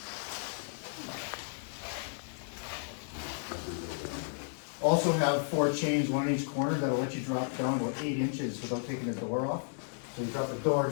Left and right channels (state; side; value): silent; right; digital silence